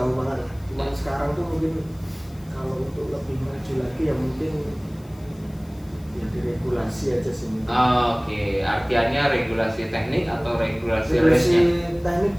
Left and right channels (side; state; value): left; noise; hiss, 27 dB below the sound